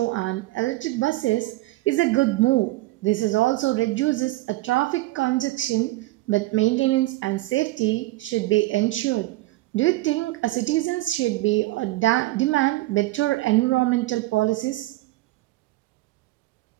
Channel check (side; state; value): left; quieter; 18.7 dB